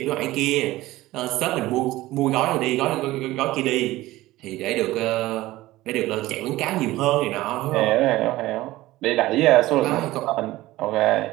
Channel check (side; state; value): left; quieter; 17.4 dB